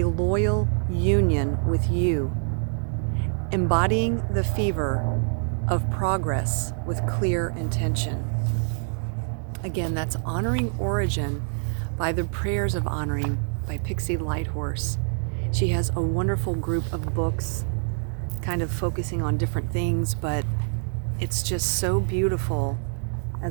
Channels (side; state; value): left; silent; 61 dB below the other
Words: loyal union with you, embodying the fever of progress with clear intention. Again, that's Honoring Origin by the Prayers of Honoring by Pixie Lighthorses. She has a wonderful group of books kind of focusing on different things, but it's just so beautiful